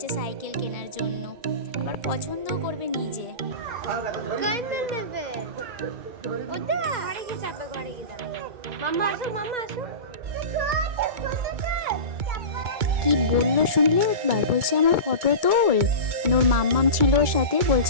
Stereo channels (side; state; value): left; late; 2.2 ms